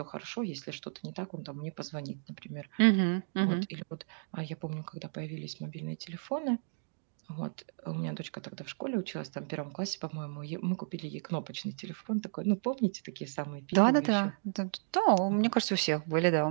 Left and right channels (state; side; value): silent; left; digital silence